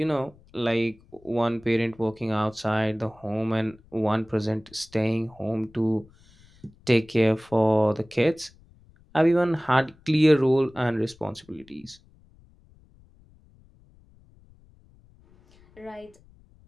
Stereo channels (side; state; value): left; noise; rumble, 28 dB below the sound